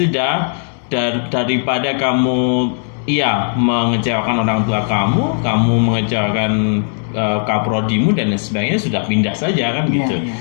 daripada kamu mengecewakan orang tua kamu mengecewakan kaprodimu dan sebagainya, sudah pindah saja kan gitu.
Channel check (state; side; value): silent; right; digital silence